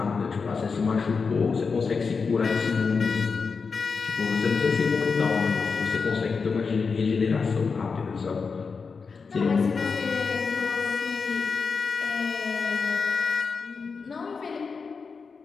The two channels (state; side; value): quieter; right; 5.1 dB